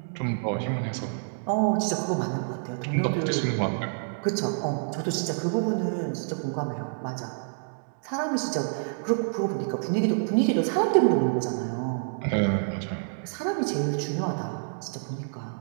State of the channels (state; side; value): silent; left; digital silence